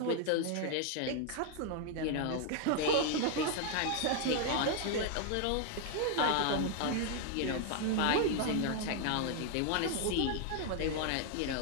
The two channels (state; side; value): different; both; correlation 0.00